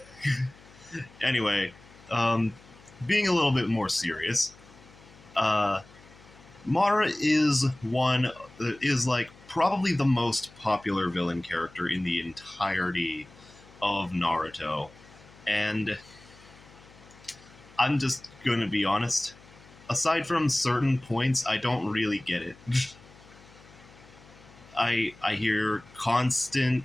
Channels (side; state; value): left; noise; hum, 24 dB below the sound